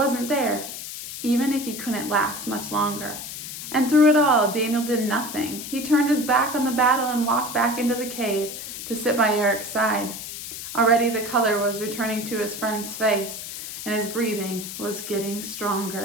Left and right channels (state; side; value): noise; left; hiss, 9 dB below the sound